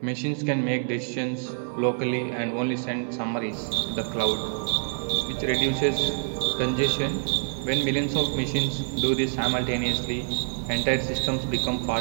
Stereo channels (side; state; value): left; silent; digital silence